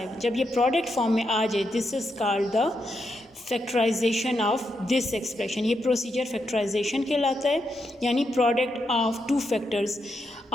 जब ये product form में आ जाए, this is called the factorisation of this expression. ये procedure factorisation कहलाता है, यानी product of two factors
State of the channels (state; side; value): normal; both; correlation 0.83